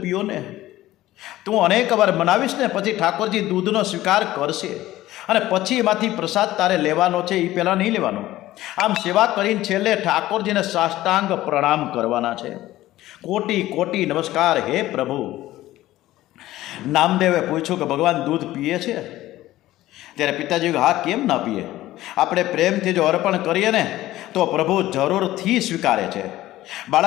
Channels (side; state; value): right; quieter; 15.6 dB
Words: પીઓ ને. તું અનેક વાર મનાવીશ ને પછી ઠાકોરજી દૂધનો સ્વીકાર કરશે અને પછી એમાંથી પ્રસાદ તારે લેવાનો છે, એ પહેલાં નહીં લેવાનો. આમ સેવા કરીને છેલ્લે ઠાકોરજીને સાષ્ટાંગ પ્રણામ કરવાના છે. કોટી કોટી નમસ્કાર હે પ્રભુ. નામદેવે પૂછ્યું કે ભગવાન દૂધ પીએ છે? ત્યારે પિતાજી હા, કેમ ના પીએ? આપણે પ્રેમથી જો અર્પણ કરીએ ને તો પ્રભુ જરૂરથી સ્વીકારે છે.